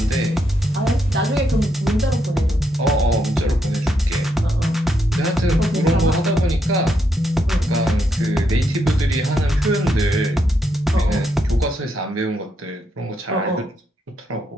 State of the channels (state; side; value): normal; both; correlation 0.78